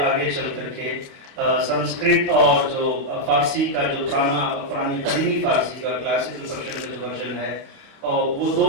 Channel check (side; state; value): left; late; 29 ms